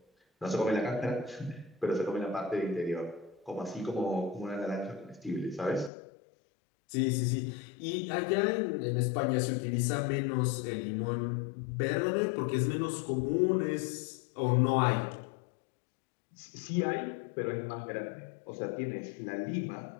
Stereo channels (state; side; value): drops out; right; at 5.9 s